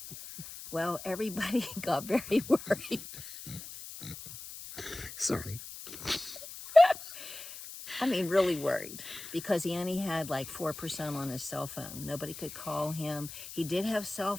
Well, everybody got very worried. Sorry. I mean, really worried, because he only had like 4% on his cell phone. Nobody could call him. He did have cell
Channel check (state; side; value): noise; left; hiss, 12 dB below the sound